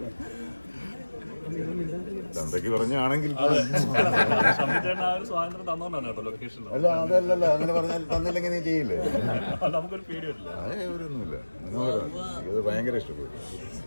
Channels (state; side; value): inverted; both; correlation -1.00